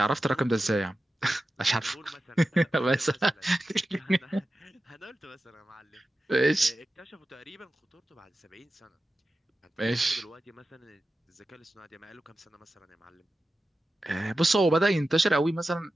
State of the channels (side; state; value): both; normal; correlation 0.93